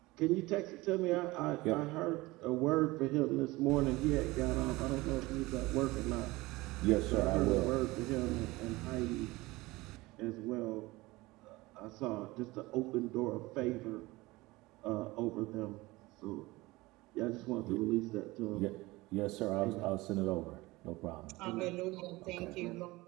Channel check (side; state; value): left; quieter; 20.8 dB